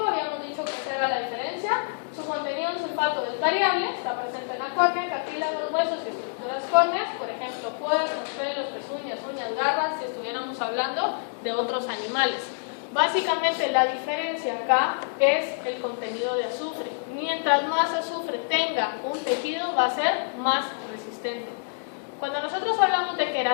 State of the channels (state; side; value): silent; right; digital silence